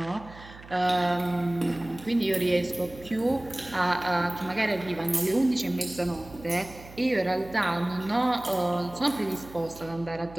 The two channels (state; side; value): noise; right; hum, 18 dB below the sound